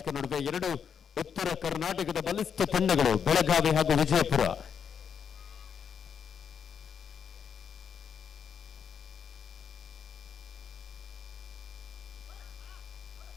ನಡುವೆ 2 ಉತ್ತರ ಕರ್ನಾಟಕದ ಬಲಿಷ್ಠ ತಂಡಗಳು ಬೆಳಗಾವಿ ಹಾಗೂ ವಿಜಯಪುರ.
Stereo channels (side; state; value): right; quieter; 7.3 dB